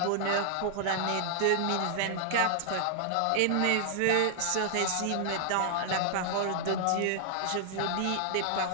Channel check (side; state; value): both; different; correlation 0.00